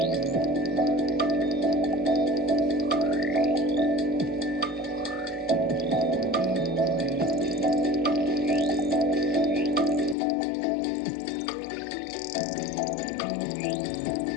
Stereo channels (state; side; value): drops out; right; at 10.2 s